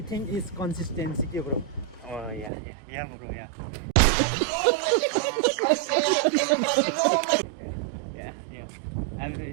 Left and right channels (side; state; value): left; drops out; at 2.5 s